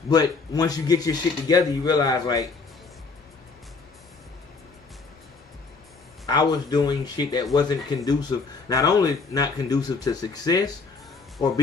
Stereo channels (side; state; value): right; quieter; 4.4 dB